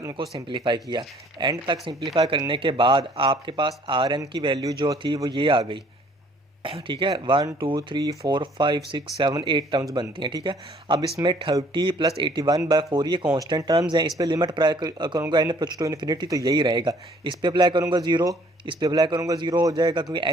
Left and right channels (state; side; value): normal; both; correlation 0.59